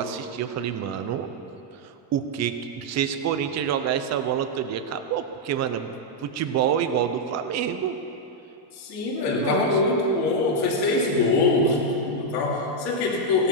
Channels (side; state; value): both; normal; correlation -0.02